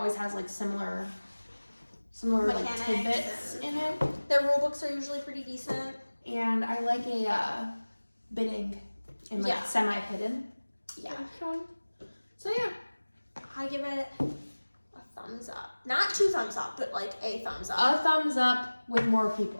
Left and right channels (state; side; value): inverted; both; correlation -1.00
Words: has like similar like Mechanics tidbits in it. Their rule books are usually pretty decent. And I like a bidding and like semi-hidden. Yeah. So yeah. I give it a thumbs up. Not 2 thumbs up, but like a thumbs up. A thumbs up with more